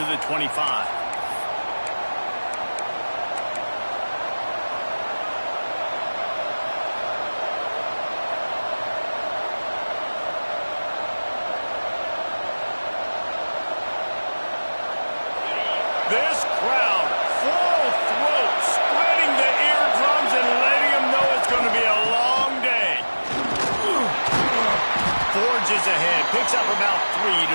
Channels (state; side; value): inverted; both; correlation -1.00